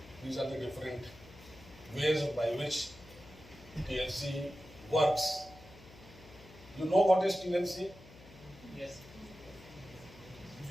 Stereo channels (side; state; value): left; noise; hum, 20 dB below the sound